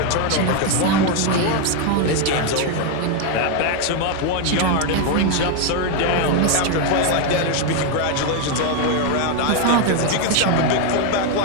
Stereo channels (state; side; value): different; both; correlation 0.01